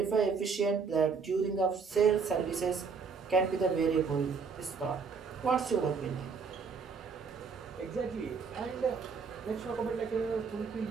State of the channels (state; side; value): quieter; left; 5.4 dB